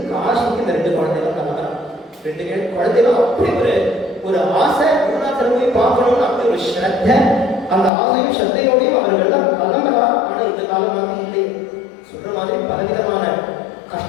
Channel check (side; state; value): right; drops out; at 7.9 s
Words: காசிக்கு இந்த 2 குழந்தைகளும் கிளம்புறாங்க. 2 குழந்தைகளும் அப்படி ஒரு ஆசை, குருநாதரை போய் பார்க்கணும்னு அப்படி ஒரு ஸ்ரத்த, அந்த ஆசையும் ஸ்ரத்தையோடையும் அவர்கள் தான் கிளம்புறா. ஆனா இந்த காலம் மாதிரி இல்லை, சொல்ற மாதிரி பலவிதமான